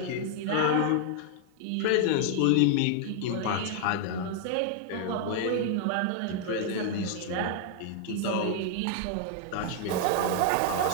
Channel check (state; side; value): different; both; correlation 0.00